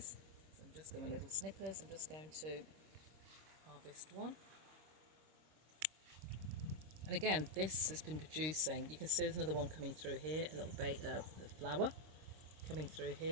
So I'm just going with little snippers. I'm just going to harvest one. And again, this has been producing. You can see there's another one coming through here, a little the flower coming through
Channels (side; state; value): left; late; 26 ms